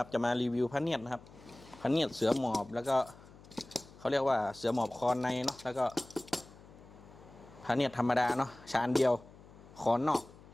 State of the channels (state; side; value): noise; left; hum, 21 dB below the sound